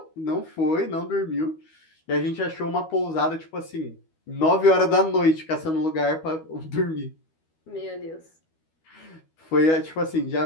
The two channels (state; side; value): late; right; 13 ms